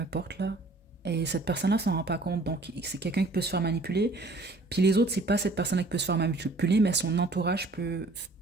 là. Et cette personne-là s'en rend pas compte. Donc, c'est quelqu'un qui peut se faire manipuler. Puis les autres, c'est pas cette personne-là qui peut se faire manipuler, mais son entourage peut,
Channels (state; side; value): quieter; left; 3.1 dB